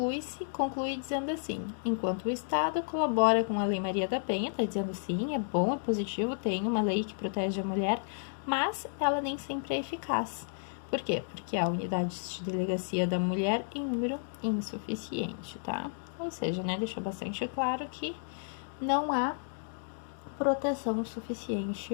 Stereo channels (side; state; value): right; silent; digital silence